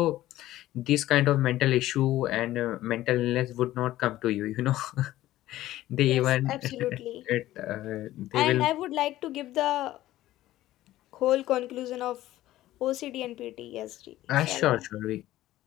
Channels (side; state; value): right; quieter; 15.1 dB